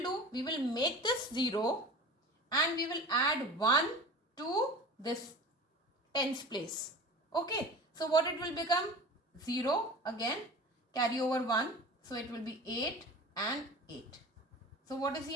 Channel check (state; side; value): normal; both; correlation 0.37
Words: We will make this 0 and we will add 1 to this tens place. Okay. So what it will become? 0 again. Carry over 1. So it will be 8 and 8. So what is